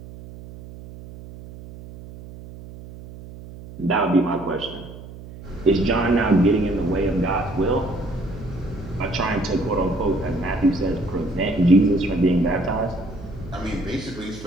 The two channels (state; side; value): noise; right; hum, 15 dB below the sound